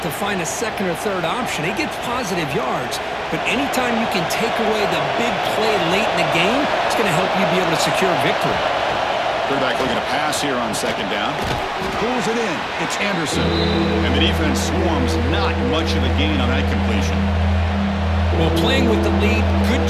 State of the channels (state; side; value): identical; both; correlation 1.00